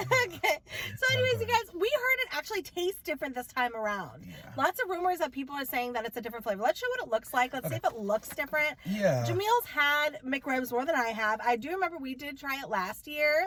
Okay. So anyways, you guys, we heard it actually tastes different this time around. Yeah. Lots of rumors that people are saying that it's a different flavor. Let's show what it looks like. Let's see if it looks different. Yeah. Jamil's had McRibs more than I have. I do remember we did try it last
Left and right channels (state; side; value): identical; both; correlation 1.00